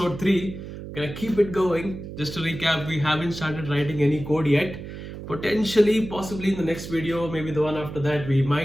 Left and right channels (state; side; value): noise; right; hum, 10 dB below the sound